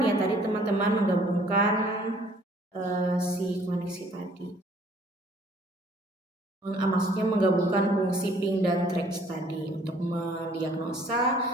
ya tadi teman-teman, menggabungkan si koneksi tadi. Maksudnya menggabungkan fungsi ping dan threads tadi untuk mendiagnosa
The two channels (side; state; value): both; normal; correlation 0.58